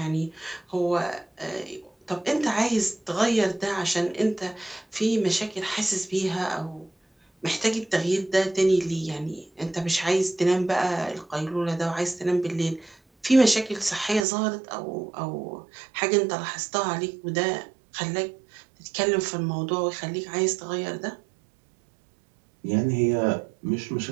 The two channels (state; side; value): drops out; left; at 14.2 s